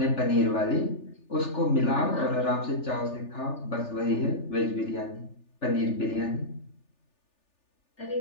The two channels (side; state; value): right; late; 3.4 ms